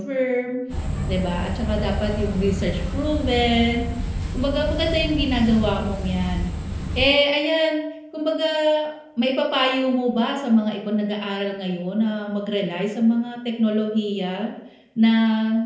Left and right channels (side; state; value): both; identical; correlation 1.00